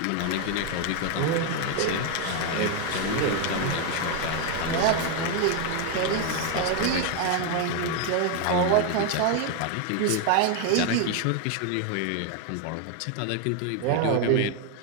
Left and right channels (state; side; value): different; both; correlation 0.01